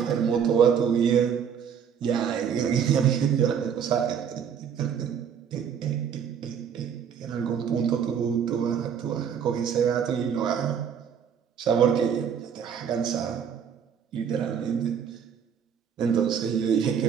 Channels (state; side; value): quieter; left; 7.7 dB